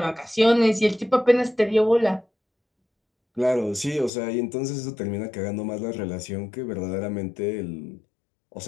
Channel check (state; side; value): drops out; right; at 4.1 s